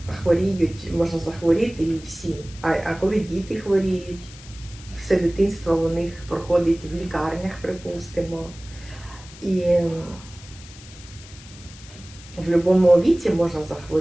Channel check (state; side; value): noise; left; hiss, 19 dB below the sound